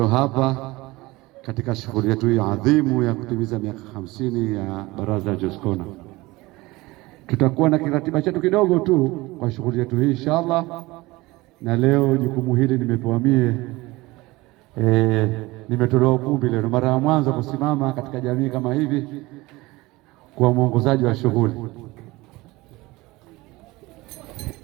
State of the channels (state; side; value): quieter; left; 21.0 dB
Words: hapa katika shughuli yetu hii adhimu ya kutimiza miaka 50 ya Baraza la Jaskona. Tutakuwa na kiratiba chetu kidogo tu kwa shughuli yetu hii inshallah, na leo jukumu hili nimepewa mie. Nimetolewa ukumbi leo, mara ya mwanzo kusimama katika jamii kama hivi kwa mwongozaji wa shughuli.